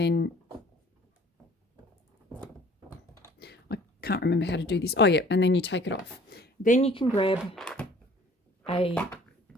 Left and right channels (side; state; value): both; normal; correlation 0.53